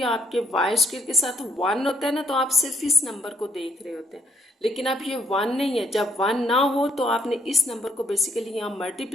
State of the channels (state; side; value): normal; both; correlation 0.72